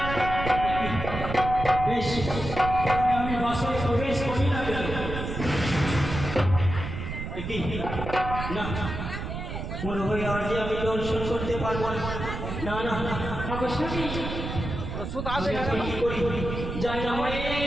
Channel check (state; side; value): noise; right; rumble, 6 dB below the sound